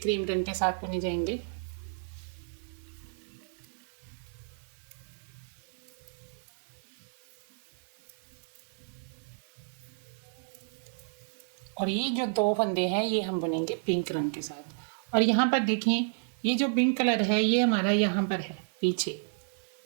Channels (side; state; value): left; silent; 57 dB below the other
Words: रंग के साथ बुने जाएंगे और ये जो 2 फंदे हैं ये हम बुनेंगे पिंक रंग के साथ। और यहाँ पर देखें ये जो पिंक कलर है ये हमारा यहाँ पर है पीछे,